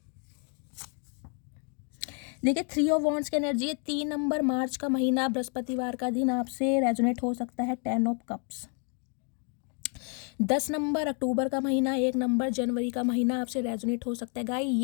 देखिए 3 ऑफ वॉन्ड्स की एनर्जी है। 3 नंबर मार्च का महीना, बृहस्पतिवार का दिन आपसे रेजोनेट हो सकता है। 10 ऑफ कप्स। 10 नंबर अक्टूबर का महीना, 1 नंबर जनवरी का महीना आपसे रेजोनेट हो सकता है। गाइस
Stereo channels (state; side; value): quieter; right; 39.1 dB